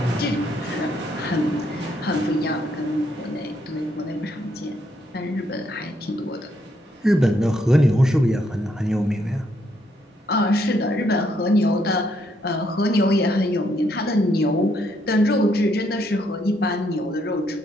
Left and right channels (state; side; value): normal; both; correlation 0.73